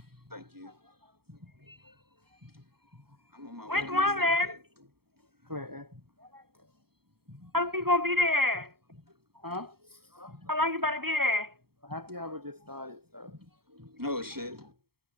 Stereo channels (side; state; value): left; late; 0.95 ms